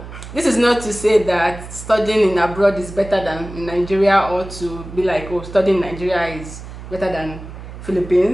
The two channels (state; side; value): noise; right; hum, 13 dB below the sound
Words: this is not to say that studying in abroad is better than in Nigeria, or to be like, oh, studying in Nigeria is better than